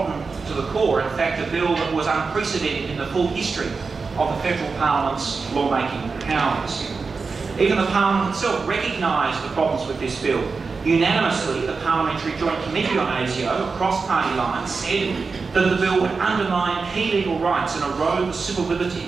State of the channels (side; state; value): left; quieter; 4.6 dB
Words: to the core, in fact a bill that was unprecedented in the full history of the federal parliament's lawmaking powers. Even the parliament itself recognised the problems with this bill. Unanimously, the Parliamentary Joint Committee on ASIO, across party lines, said that the bill would undermine key legal rights and erode the civil